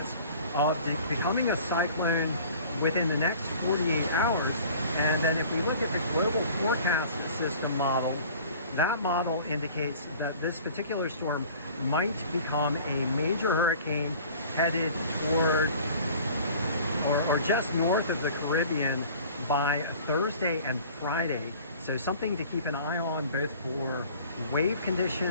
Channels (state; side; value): inverted; both; correlation -0.47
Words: of becoming a cyclone within the next 48 hours. And then if we look at the global forecast system model, that model indicates that this particular storm might become a major hurricane headed toward or just north of the Caribbean by Thursday and Friday. So something to keep an eye on, both for wave